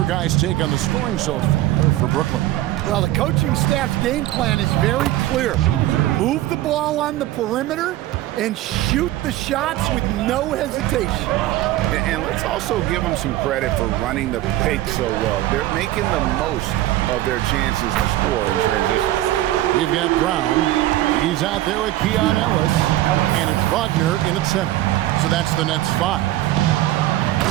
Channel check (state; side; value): quieter; left; 15.1 dB